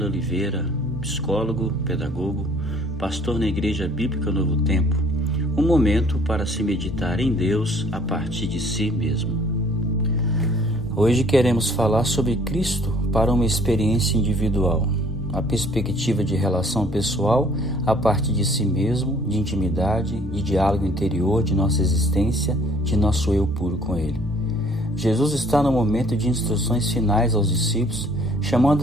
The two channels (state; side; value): normal; both; correlation 0.56